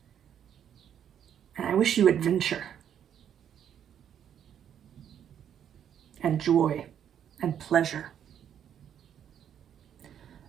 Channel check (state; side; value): quieter; left; 9.2 dB